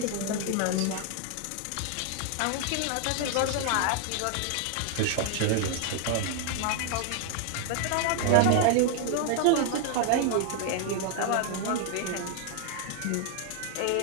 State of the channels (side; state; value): both; different; correlation 0.00